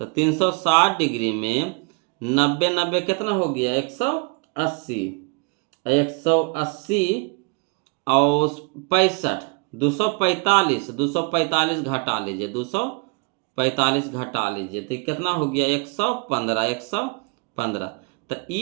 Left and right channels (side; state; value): left; quieter; 31.4 dB